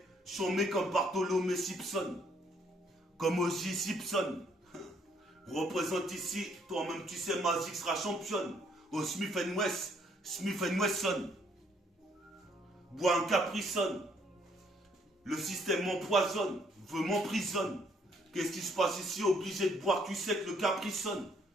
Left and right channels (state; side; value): normal; both; correlation 0.67